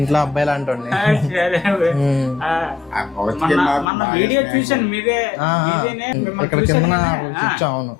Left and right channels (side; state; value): right; drops out; at 3.9 s